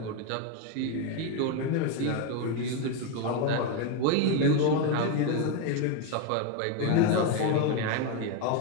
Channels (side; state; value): both; different; correlation 0.02